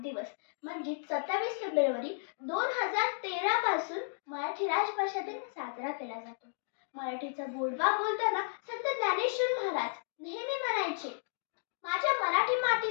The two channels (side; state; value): right; silent; digital silence